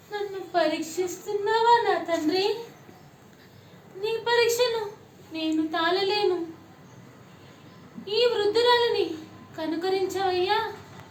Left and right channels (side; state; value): both; identical; correlation 1.00